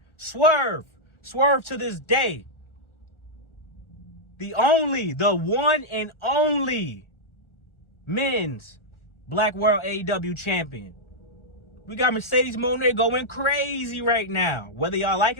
Swerve to this day. The one and only men's Black World AEW champion. We got Mercedes Moné going crazy right now, whether y'all like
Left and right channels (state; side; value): late; right; 1.4 ms